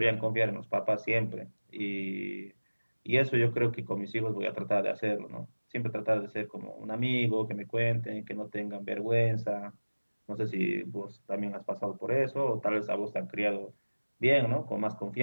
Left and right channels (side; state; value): both; inverted; correlation -1.00